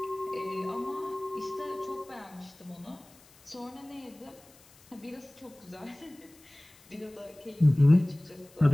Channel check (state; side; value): noise; left; hiss, 26 dB below the sound